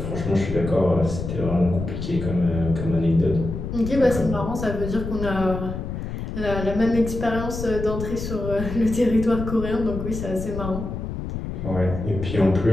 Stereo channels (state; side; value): noise; left; rumble, 6 dB below the sound